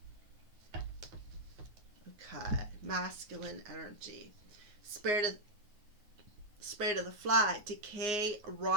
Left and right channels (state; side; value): late; left; 9.6 ms